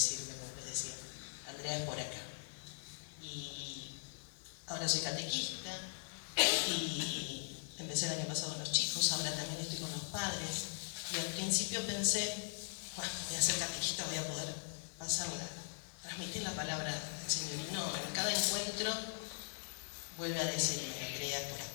como les decía, Andrea, es por acá. Y ahora soy catequista y empecé el año pasado con los chicos, ahora también estoy con los padres, y al principio pensé, bueno, voy a ser catequista, voy a poder transmitir la palabra del Señor, y no, en cada encuentro vuelve a decirme, Andrea, es por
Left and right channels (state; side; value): silent; right; digital silence